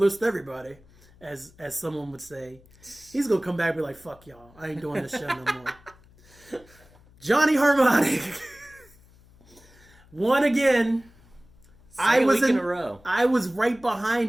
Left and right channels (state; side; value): noise; left; hum, 27 dB below the sound